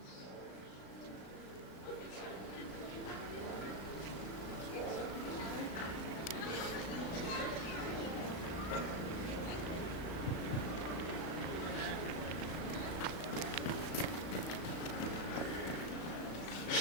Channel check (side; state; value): right; late; 36 ms